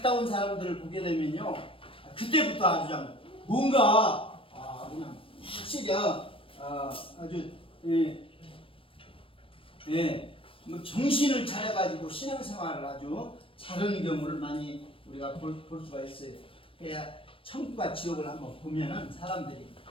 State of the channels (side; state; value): right; late; 0.26 ms